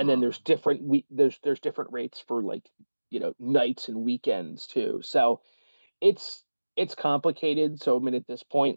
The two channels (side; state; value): both; inverted; correlation -1.00